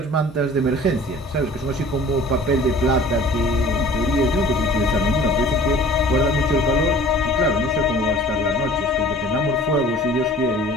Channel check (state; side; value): normal; both; correlation 0.47